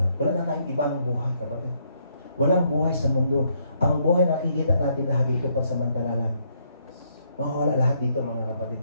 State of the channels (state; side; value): inverted; both; correlation -0.72